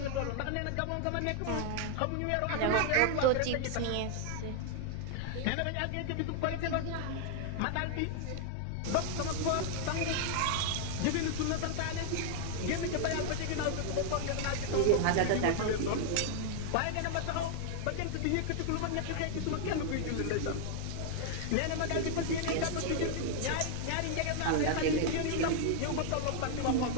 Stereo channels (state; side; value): different; both; correlation 0.00